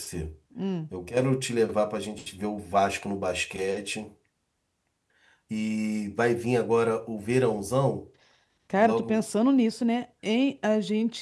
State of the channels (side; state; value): both; identical; correlation 1.00